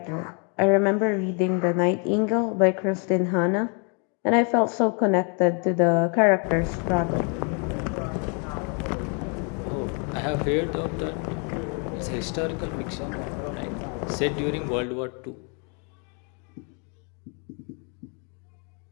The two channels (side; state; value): right; quieter; 36.9 dB